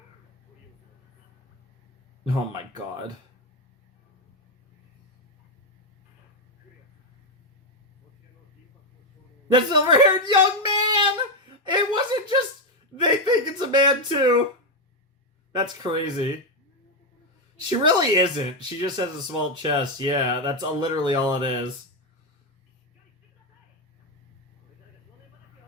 Oh my god. The silver-haired young man! It wasn't just... They think it's a man, too. That's crazy. She really isn't. She just has a small chest. Yeah, that's literally all it is.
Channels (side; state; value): both; normal; correlation 0.05